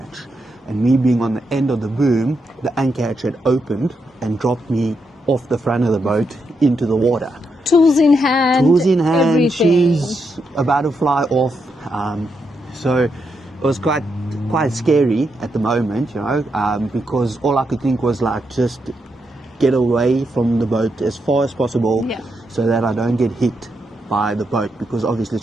And me being on the end of the boom, the anchor hatch had opened and dropped me off the front of the boat into the water. Tools in hand. Tools in hand. Everything. She's about to fly off. So it was quite scary at the moment, you know, because all I could think was like just get away from the boat as far as possible, yeah, so that I don't get hit by the boat, because obviously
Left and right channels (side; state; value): both; normal; correlation 0.82